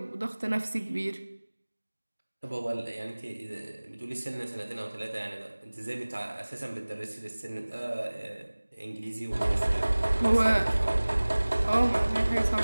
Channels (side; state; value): both; inverted; correlation -1.00